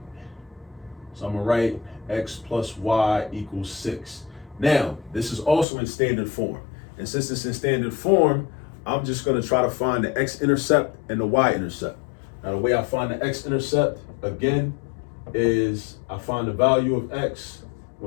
So I'm going to write x plus y equals 6. Now, this is also in standard form. And since it's in standard form, I'm just going to try to find the X-Intercept and the Y-Intercept. Now, the way I find the X-Intercept, again, is I find the value of x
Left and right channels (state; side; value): drops out; right; at 5.7 s